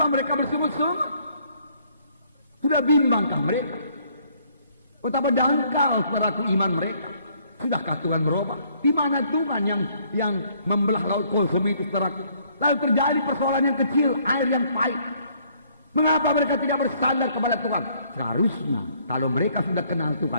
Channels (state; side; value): inverted; both; correlation -0.64